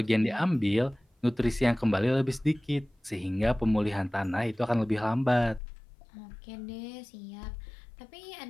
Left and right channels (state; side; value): drops out; right; at 5.6 s